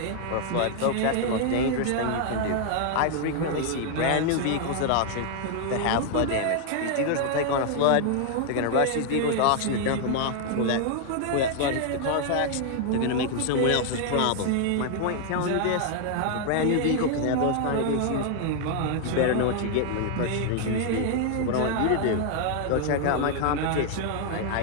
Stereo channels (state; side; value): different; both; correlation 0.00